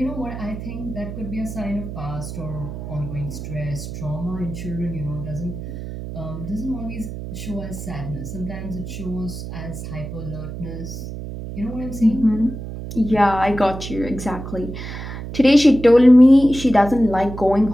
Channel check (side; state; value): right; noise; hum, 8 dB below the sound